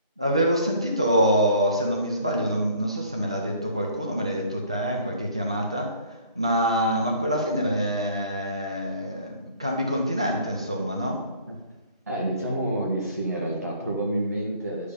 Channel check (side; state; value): both; inverted; correlation -0.54